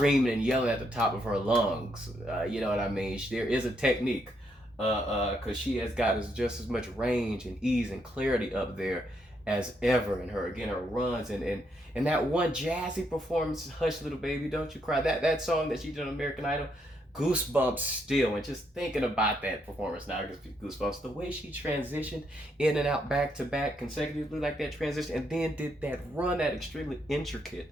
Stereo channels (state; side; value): normal; both; correlation 0.76